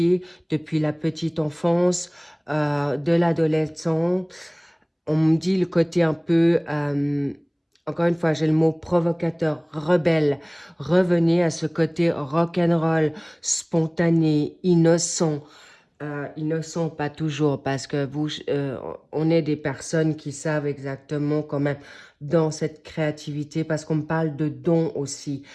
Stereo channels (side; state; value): both; identical; correlation 1.00